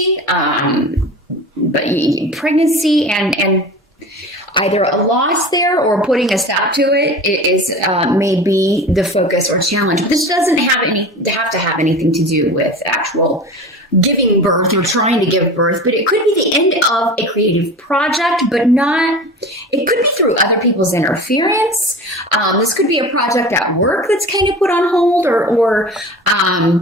but pregnancy and either a loss there or putting a stop to it is may be the focus or challenge. But this doesn't have to have anything to do with actual giving birth or trying to give birth, but it could be the end of a creative project, but not, it could be through other people's interference. This could be a project at work that's kind of put on hold or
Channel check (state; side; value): normal; both; correlation 0.34